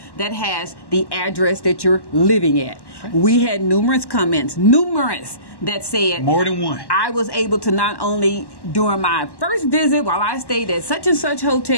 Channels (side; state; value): right; late; 1.1 ms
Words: that has the address that you're living at. We had numerous comments, that said more than one. I was able to not only during my first visit while I stayed at such and such